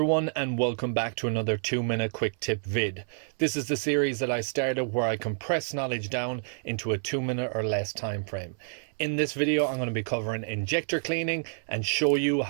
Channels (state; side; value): silent; left; 59 dB below the other